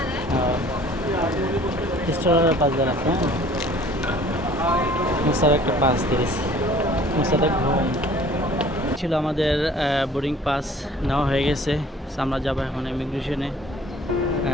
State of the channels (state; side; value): normal; both; correlation 0.51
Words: স্টোরের pass দেওয়া আছে, হ্যাঁ। মুসার একটা পাস দিয়েছি, মুসাদের ঘুম ছিল। আমাদের বোর্ডিং পাস নেওয়া হয়ে গেছে। সো আমরা যাবো এখন ইমিগ্রেশনে।